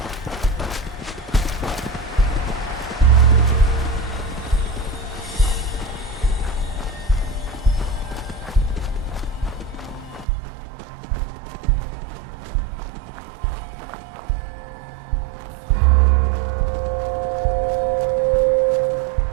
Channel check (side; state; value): left; drops out; at 10.2 s